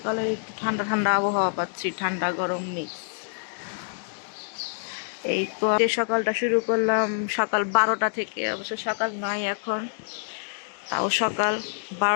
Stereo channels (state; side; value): silent; right; digital silence